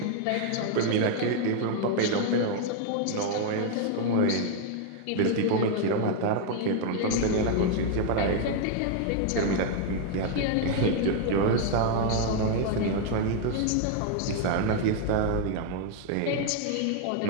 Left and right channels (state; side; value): different; both; correlation 0.00